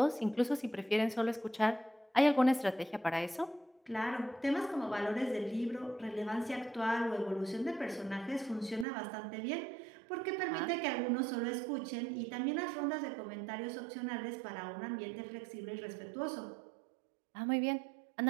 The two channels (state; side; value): drops out; left; at 8.8 s